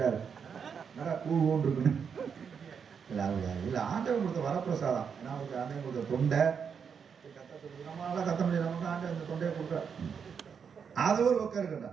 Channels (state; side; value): quieter; left; 6.7 dB